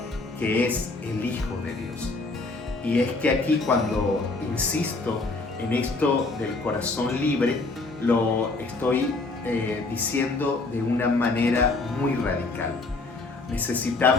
que es el Hijo de Dios. Y es que aquí, cuando insisto en esto del corazón libre, lo estoy diciendo de una manera muy radical.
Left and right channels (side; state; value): right; quieter; 3.4 dB